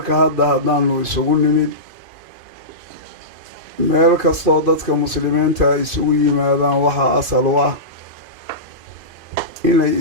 haddaanu isugu nimid meel kastoo dadka muslimiinta ay isugu yimaadaan waxaa asal u ah inay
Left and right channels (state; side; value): late; left; 2.5 ms